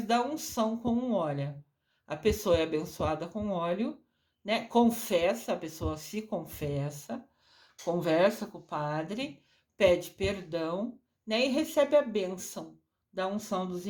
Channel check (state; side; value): identical; both; correlation 1.00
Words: da unção com um óleo. A pessoa é abençoada com óleo, né? Confessa, a pessoa se confessa, conversa com o padre, pede perdão, né? E recebe a bênção da unção dos